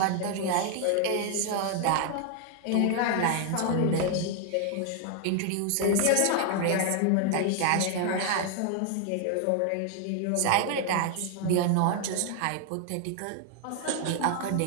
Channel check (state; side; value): different; both; correlation 0.00